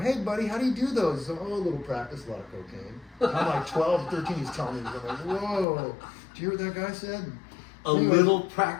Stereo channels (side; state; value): right; drops out; at 5.7 s